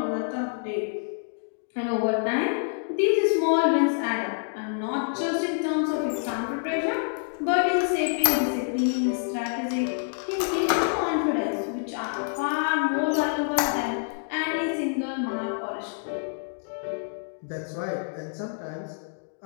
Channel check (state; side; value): silent; right; digital silence